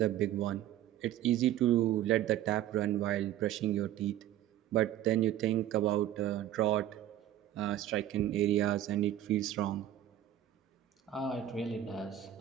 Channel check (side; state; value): left; quieter; 12.1 dB